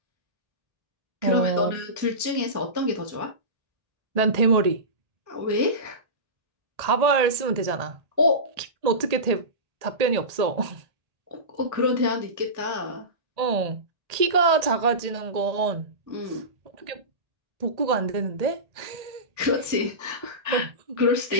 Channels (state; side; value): late; left; 1.8 ms